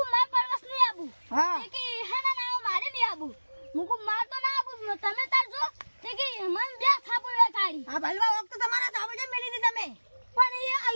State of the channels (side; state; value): both; inverted; correlation -1.00